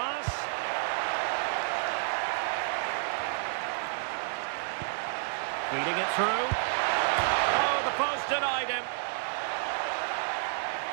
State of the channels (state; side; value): silent; left; digital silence